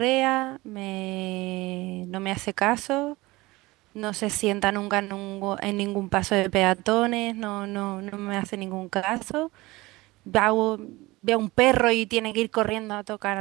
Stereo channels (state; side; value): quieter; left; 20.8 dB